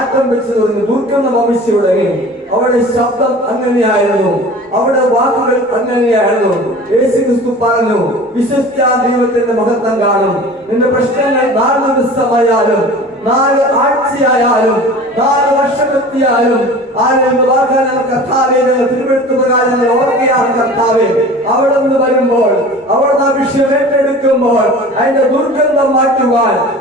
വെച്ച് തുടങ്ങി, ദുർഗന്ധ വംശയുടെ അവിടെ ശബ്ദം അങ്ങനെയായിരുന്നു, അവിടെ വാക്കുകൾ അങ്ങനെയായിരുന്നു. യേശുക്രിസ്തു പറഞ്ഞു, വിശ്വസിച്ചാൽ ദൈവത്തിന്റെ മഹത്വം കാണും. നിന്റെ പ്രശ്നങ്ങൾ 4 ദിവസമായാലും 4 ആഴ്ചയായാലും 4 വർഷമെത്തിയാലും കർത്താവേ, ഞങ്ങൾ തിരുവെടുത്തു പ്രകാരം ഞങ്ങൾ ഓർക്കുകയാണ്. കർത്താവേ, അവിടെ നിന്ന് വരുമ്പോൾ, അവിടെ വിഷയം ഏറ്റെടുക്കുമ്പോൾ അതിന്റെ ദുർഗന്ധം മാറ്റുവാൻ,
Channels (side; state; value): both; normal; correlation 0.40